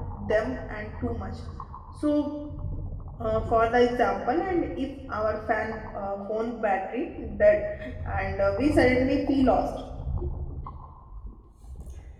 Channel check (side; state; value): both; identical; correlation 1.00